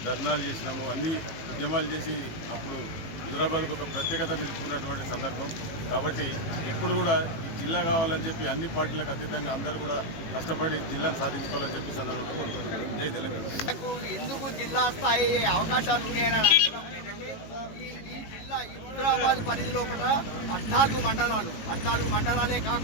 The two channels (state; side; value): late; right; 18 ms